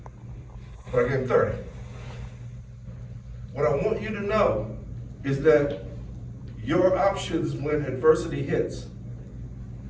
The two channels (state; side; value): identical; both; correlation 1.00